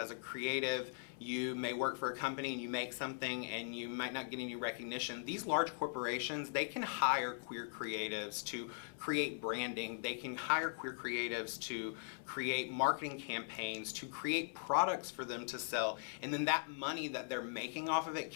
a creative, you may work for a company and you make something and you might not get any recognition. These large corporations, they can hire queer creatives to create branding. They can hire queer creatives to create marketing campaigns, to create products for them to sell. And then that money that they're making off of it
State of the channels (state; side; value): silent; right; 51 dB below the other